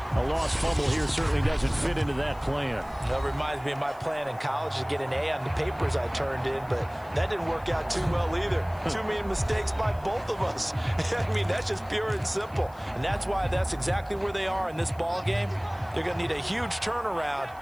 a lost fumble here certainly doesn't fit into that plan. That reminds me of my plan in college to get an A on the papers I turned in, but that didn't work out too well either. Too many mistakes by both of us. I mean, that's just pure and simple. And that's why that's exactly where they are in this ball game. They're going to need a huge turnaround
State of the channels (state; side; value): noise; left; hiss, 27 dB below the sound